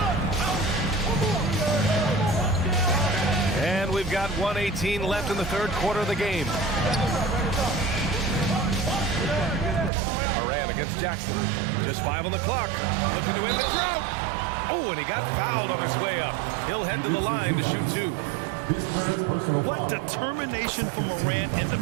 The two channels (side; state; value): left; drops out; at 9.9 s